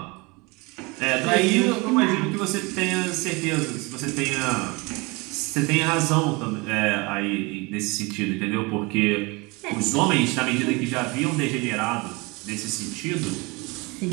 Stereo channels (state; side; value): quieter; left; 26.3 dB